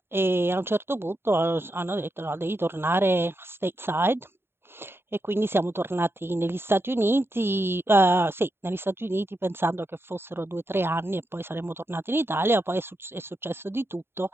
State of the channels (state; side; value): late; left; 0.11 ms